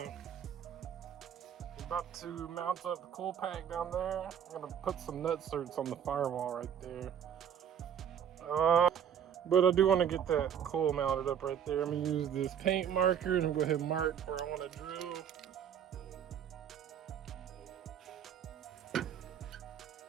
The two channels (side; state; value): left; quieter; 8.7 dB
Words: about to mount up the cool pack down there. I'm gonna put some nut certs on the firewall right there. But I do want to get that coil mounted up right there. I'm gonna use this paint marker and I'm gonna go ahead and mark where I want to drill.